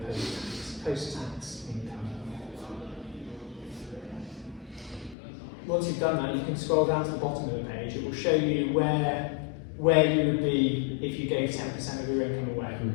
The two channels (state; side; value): drops out; right; at 5.2 s